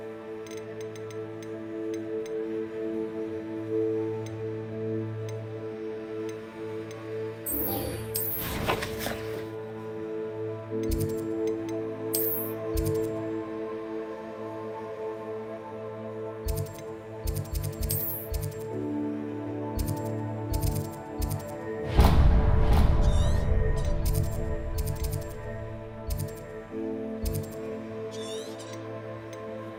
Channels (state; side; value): identical; both; correlation 1.00